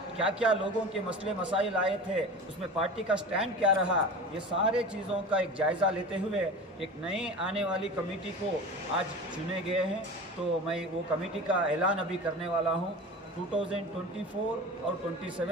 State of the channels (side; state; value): both; normal; correlation 0.33